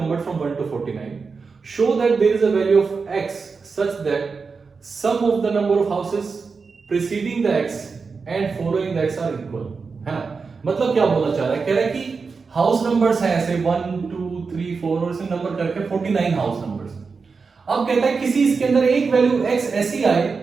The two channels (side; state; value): left; quieter; 4.9 dB